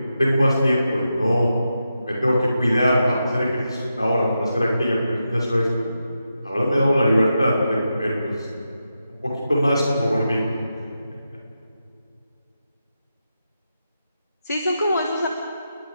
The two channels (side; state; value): both; inverted; correlation -0.88